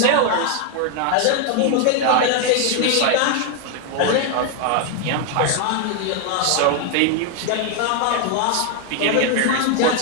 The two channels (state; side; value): different; both; correlation 0.01